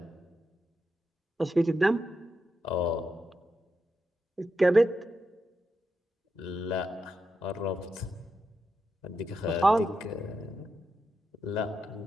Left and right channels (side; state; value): both; normal; correlation 0.86